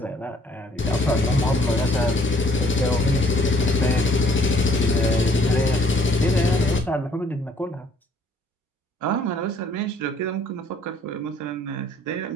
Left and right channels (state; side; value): normal; both; correlation 0.61